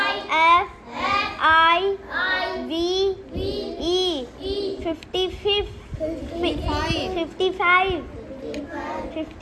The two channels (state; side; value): identical; both; correlation 1.00